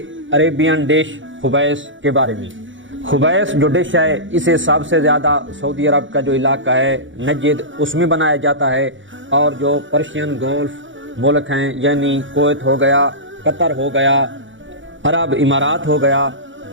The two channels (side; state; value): left; late; 0.56 ms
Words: عربین ڈش خبیث کے بارے میں۔ خبیث جو ڈش ہے، اسے سب سے زیادہ سعودی عرب کا جو علاقہ ہے نجد، اس میں بنایا جاتا ہے، اور جو پرشین گولف ملک ہیں یعنی کویت ہو گیا، قطر ہو گیا، عرب امارات ہو گیا،